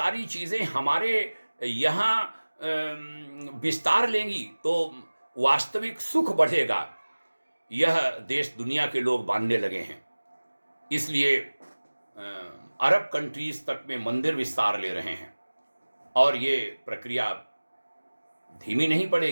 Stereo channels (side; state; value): both; inverted; correlation -1.00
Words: चीज़ें हमारे यहाँ विस्तार लेंगी तो वास्तविक सुख बढ़ेगा। यह देश दुनिया के लोग मानने लगे हैं। इसलिए अरब कंट्रीज तक में मंदिर विस्तार ले रहे हैं और ये प्रक्रिया धीमी नहीं